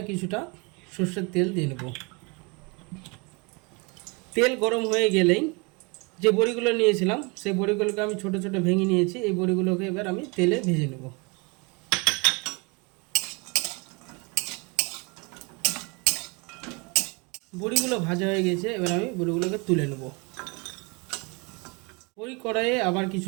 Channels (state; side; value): quieter; left; 29.7 dB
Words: কিছুটা সর্ষের তেল দিয়ে নেব। তেল গরম হয়ে গেলেই যে বড়িগুলো নিয়েছিলাম সেই বড়িগুলোকে আমি ছোট ছোট ভেঙে নিয়েছি। এই বড়িগুলোকে এবার আমি তেলে ভেজে নেব। বড়িগুলো ভাজা হয়ে গেছে, এবার আমি বড়িগুলোকে তুলে নেব। ওই কড়াইয়ে আবার